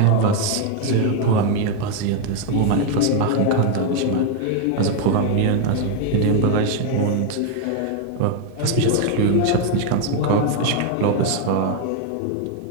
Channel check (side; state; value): both; different; correlation 0.01